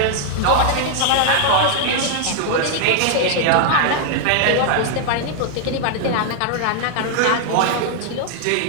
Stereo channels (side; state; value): both; different; correlation 0.00